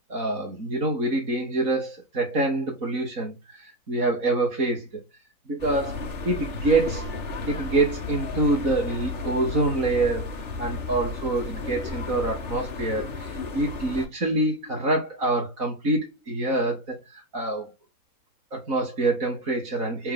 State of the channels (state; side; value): late; left; 3.4 ms